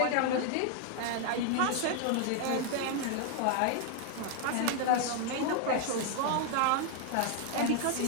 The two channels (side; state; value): both; different; correlation 0.00